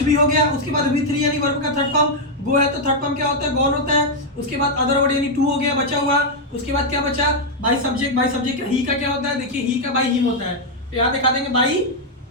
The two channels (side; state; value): both; normal; correlation -0.01